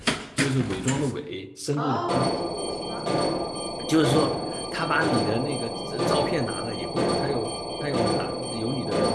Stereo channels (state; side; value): identical; both; correlation 1.00